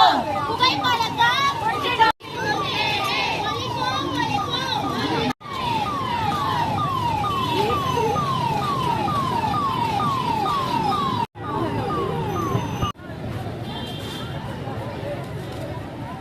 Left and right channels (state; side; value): identical; both; correlation 1.00